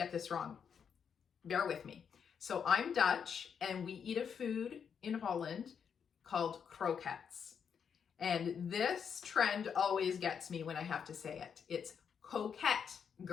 this wrong. Bear with me. So I'm Dutch and we eat a food in Holland called croquettes. And this trend always gets me when I have to say it. It's Coquette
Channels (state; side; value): quieter; right; 7.1 dB